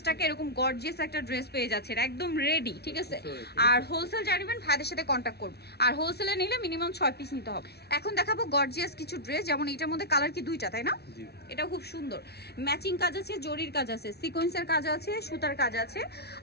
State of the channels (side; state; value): right; late; 0.48 ms